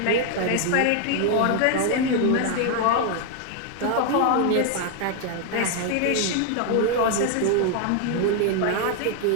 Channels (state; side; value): different; both; correlation 0.00